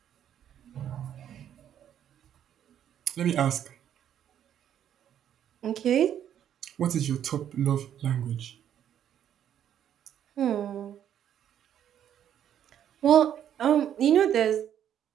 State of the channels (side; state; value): left; quieter; 10.0 dB